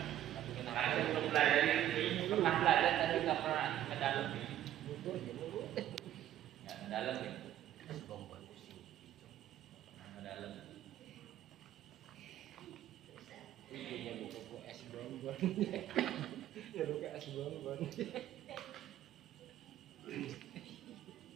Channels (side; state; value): left; quieter; 12.2 dB